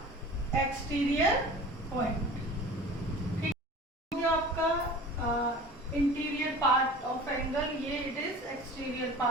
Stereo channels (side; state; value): both; normal; correlation 0.41